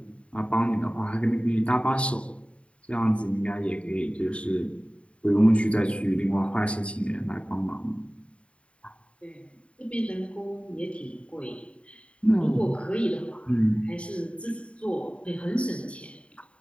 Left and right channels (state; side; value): late; right; 0.061 ms